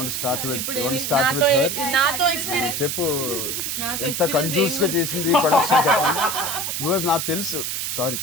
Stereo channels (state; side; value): noise; right; hiss, 2 dB below the sound